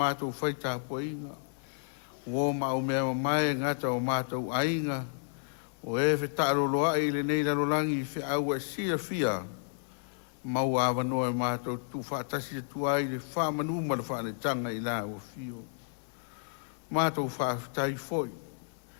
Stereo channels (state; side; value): silent; right; digital silence